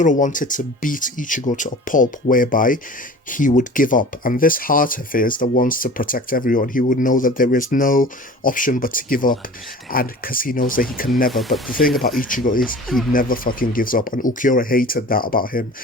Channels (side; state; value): both; normal; correlation 0.41